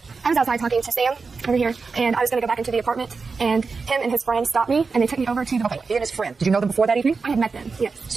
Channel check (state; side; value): quieter; left; 4.6 dB